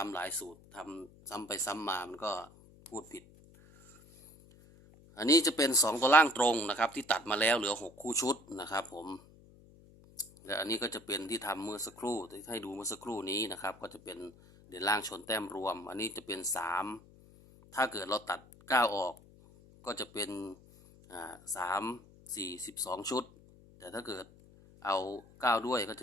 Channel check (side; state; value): left; noise; hum, 24 dB below the sound